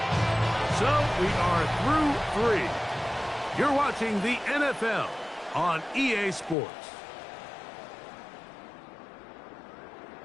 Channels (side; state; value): right; drops out; at 6.6 s